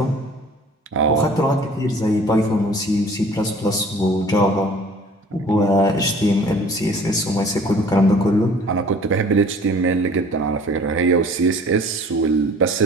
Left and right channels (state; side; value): normal; both; correlation 0.50